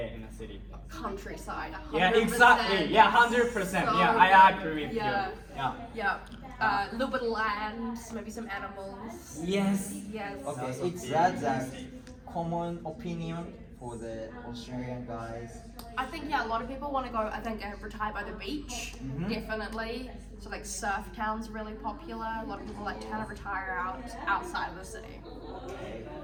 in the city? Countryside. 100%. Yeah, exactly. Yeah, 100%. So Yeah, I agree with yeah. you. Yeah. Yeah. A little bit of land, maybe some animals. Yes. Yes. Okay, Also it's very that easy. common opinion for the Australian guys. I think a lot of people want to go. I think retire by the beach, definitely. So surf towns are really popular. A lot of people like to kind of retire outside of the city. Okay.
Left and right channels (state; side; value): identical; both; correlation 1.00